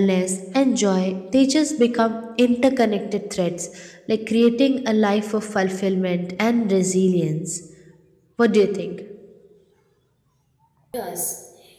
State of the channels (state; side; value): identical; both; correlation 1.00